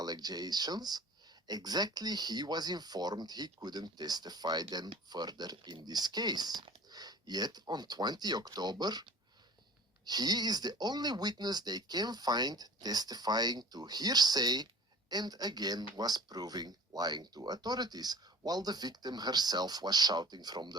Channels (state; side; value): normal; both; correlation 0.44